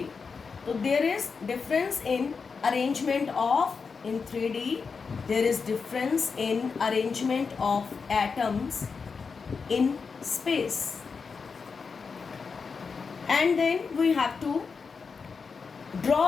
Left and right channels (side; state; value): right; quieter; 5.2 dB